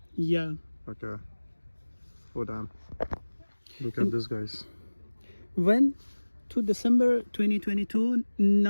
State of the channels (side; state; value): both; inverted; correlation -1.00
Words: Yeah. Okay. Oh, damn. Look at this, guys. When to December 2022,